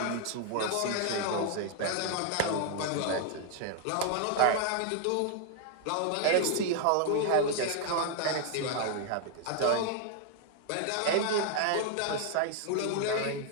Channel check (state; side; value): different; both; correlation 0.00